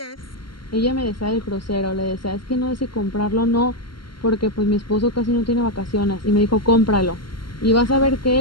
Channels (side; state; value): right; late; 0.73 ms